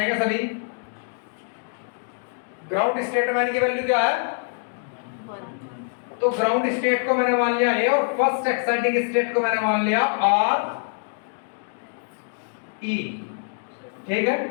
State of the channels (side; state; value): right; silent; 62 dB below the other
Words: सभी। ग्राउंड स्टेट में की वैल्यू क्या है? तो ग्राउंड स्टेट को मैंने मान लिया ए और फर्स्ट एक्साइटिंग स्टेट को मैंने मान लिया आर ई। ठीक है,